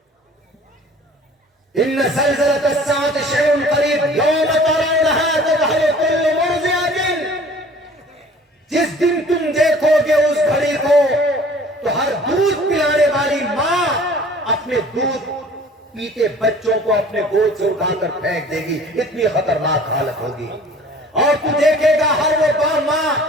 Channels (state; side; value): normal; both; correlation 0.49